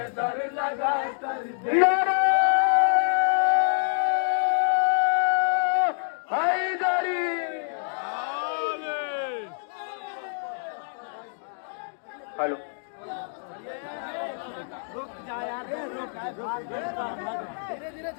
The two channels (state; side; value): silent; right; digital silence